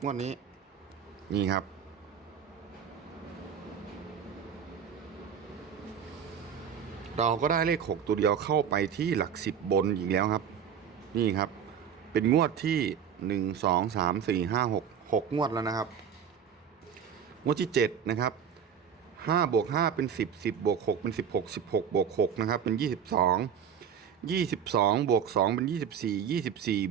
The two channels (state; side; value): quieter; left; 7.9 dB